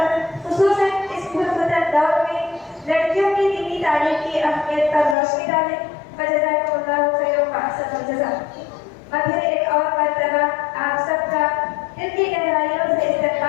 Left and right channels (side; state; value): right; drops out; at 5.2 s